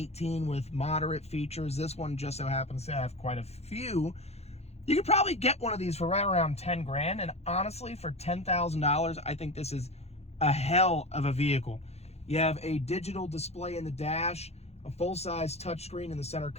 with moderate features, this one just so happens to have quite a few. You could probably get one of these for right around 10 grand, and honestly for $10,000, I think this is a hell of a vehicle. You have a digital display in the dash, a full-size touchscreen in the center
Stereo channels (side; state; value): right; late; 0.31 ms